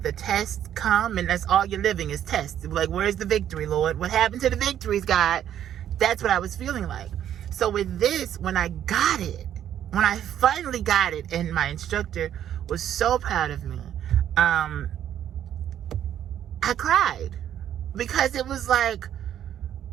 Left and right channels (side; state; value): left; quieter; 10.5 dB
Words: the tests come and that's all you're living is tests. Like, where's the victory, Lord? What happened to the victories, God? That's what I was feeling like. So with this, when I finally got it, and my instructor was so proud of me, I cried. Because it was like,